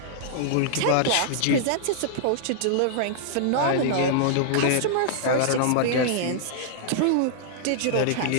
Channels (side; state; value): both; different; correlation -0.01